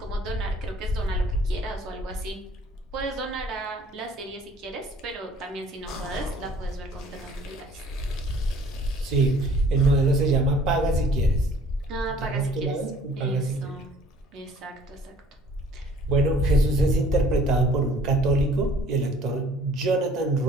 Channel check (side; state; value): both; normal; correlation 0.54